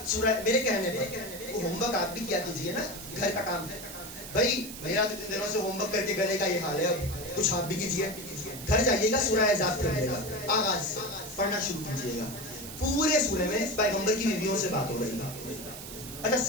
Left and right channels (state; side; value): noise; right; hiss, 11 dB below the sound